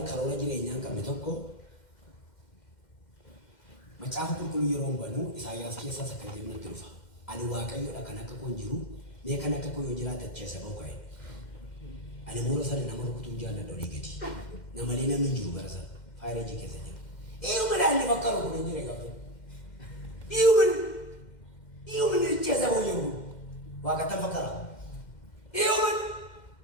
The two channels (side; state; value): right; late; 2.1 ms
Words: karoora jireenyaa qabne tokko macaafa qulqulluu yeroo banuu Isaayyaas keessaa akka jennutti dhufa ani waaqayyoodha kan akka koon jiru mee kan akka koo yoo jiraata keessa ba'u ka'e ani moora sana nama rukutuun jaalladha olii gadi namalee namni jiru bara sana faayirajii keessa jira iyuma daalli bakka rukutuun jira gaafa iyuma keessa ba'u jiru waaqatan fakkara iyuma